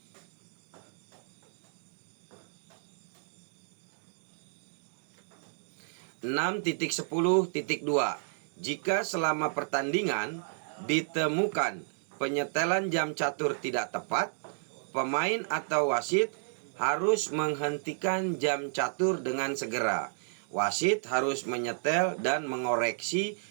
(6.10.2) Jika selama pertandingan ditemukan penyetelan jam catur tidak tepat, pemain atau wasit harus menghentikan jam catur dengan segera. Wasit harus menyetel dan mengoreksi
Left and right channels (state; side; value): silent; left; digital silence